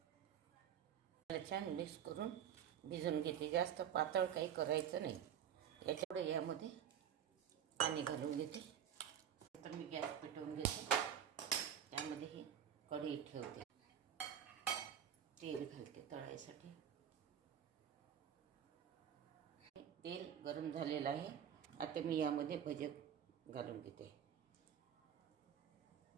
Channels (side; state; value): left; quieter; 9.2 dB